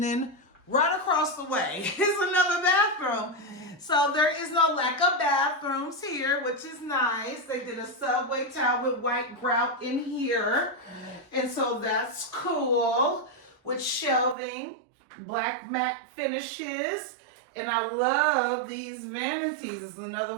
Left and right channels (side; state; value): left; drops out; at 14.4 s